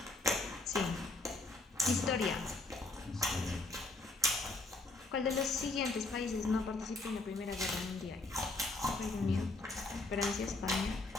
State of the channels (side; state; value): right; quieter; 3.1 dB